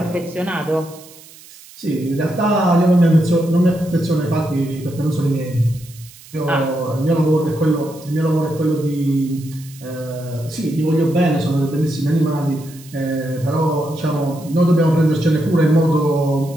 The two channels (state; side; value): noise; right; hiss, 21 dB below the sound